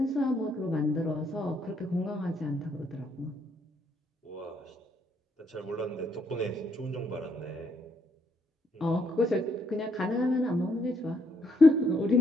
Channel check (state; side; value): normal; both; correlation 0.73